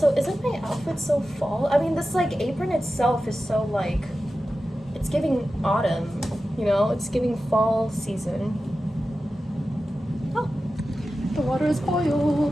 isn't my outfit so fall? I mean, this like apron itself is so like, it's giving autumn, you know? It's giving fall season. Oh, the water is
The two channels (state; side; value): normal; both; correlation 0.93